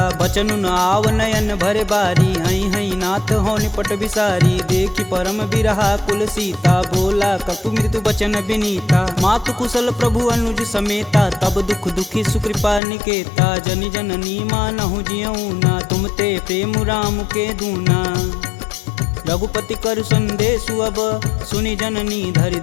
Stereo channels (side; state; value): right; drops out; at 12.8 s